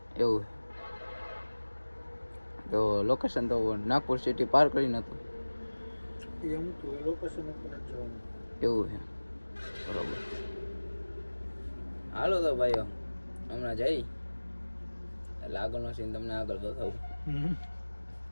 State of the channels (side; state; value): both; inverted; correlation -1.00